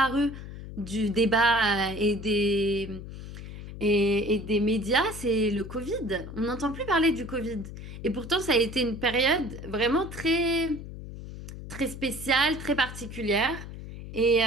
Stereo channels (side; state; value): left; noise; hum, 11 dB below the sound